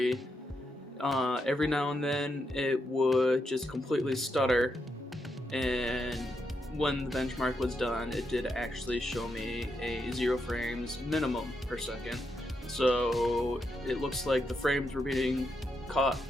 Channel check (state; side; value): normal; both; correlation 0.82